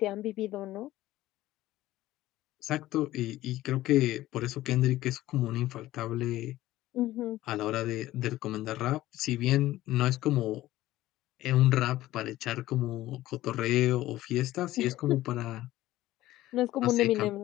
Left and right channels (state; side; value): quieter; right; 15.7 dB